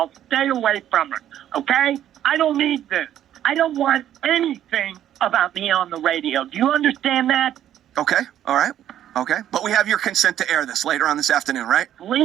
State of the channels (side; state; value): left; quieter; 11.2 dB